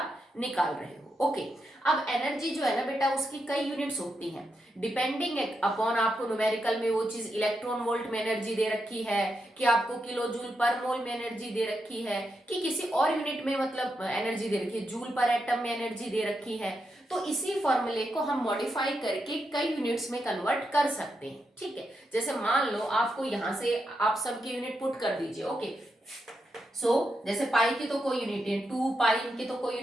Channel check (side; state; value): both; normal; correlation 0.84